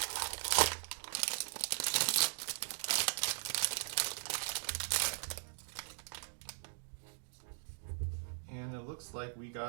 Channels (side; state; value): left; silent; digital silence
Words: And it looks like we